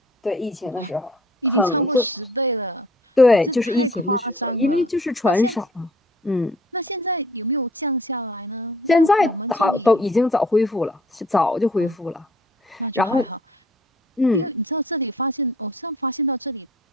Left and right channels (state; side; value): normal; both; correlation 0.54